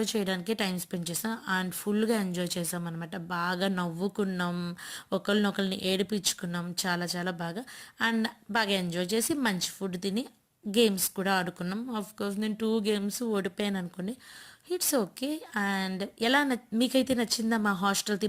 చేయడానికే టైం స్పెండ్ చేసాం. అండ్ ఫుల్గా ఎంజాయ్ చేసాం అనమాట. బాగా నవ్వుకున్నాం, ఒకరినొకరిని ఏడిపించుకున్నాం, చాలా చాలా బాగా. అండ్ బాగా ఎంజాయ్ చేసి మంచి ఫుడ్ తిని గేమ్స్ కూడా ఆడుకున్నాం. కోర్స్ నేను 2 గేమ్స్ ఓడిపోయాను అనుకోండి, ఇట్స్ ఓకే. అండ్ ఎలా మీకైతే నచ్చిందా? మా హాస్టల్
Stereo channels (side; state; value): both; identical; correlation 1.00